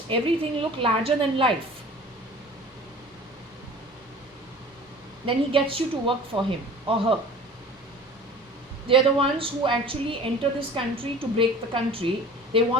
everything look larger than life, then he gets you to work for him or her. They are the ones who actually enter this country to break the country. They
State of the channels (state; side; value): normal; both; correlation 0.44